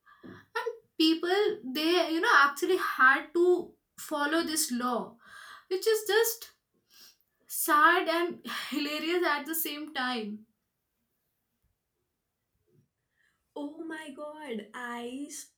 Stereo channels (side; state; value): both; identical; correlation 1.00